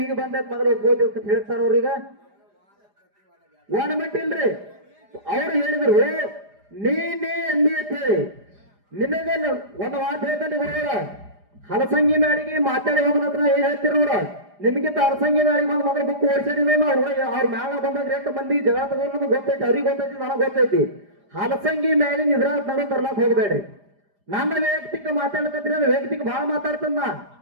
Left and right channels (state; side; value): late; left; 4.9 ms